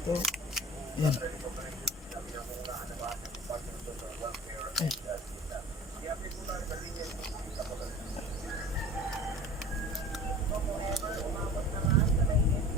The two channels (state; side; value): normal; both; correlation 0.41